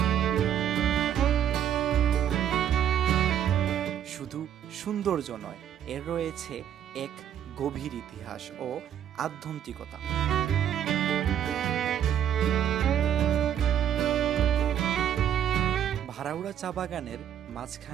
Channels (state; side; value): quieter; left; 9.9 dB